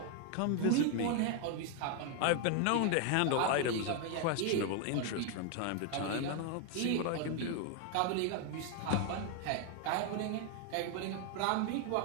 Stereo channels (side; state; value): both; different; correlation 0.01